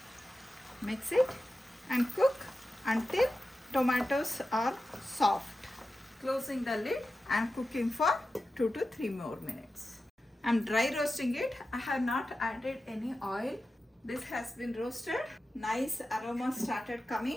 Mix it and cook until tomatoes are soft. Closing the lid and cooking for 2 to 3 more minutes. I'm dry roasting it. I have not added any oil. This has been roasted. Nice aroma started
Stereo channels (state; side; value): normal; both; correlation 0.92